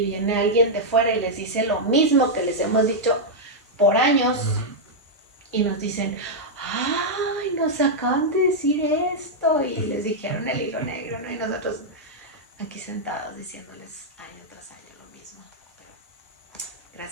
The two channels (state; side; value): normal; both; correlation -0.05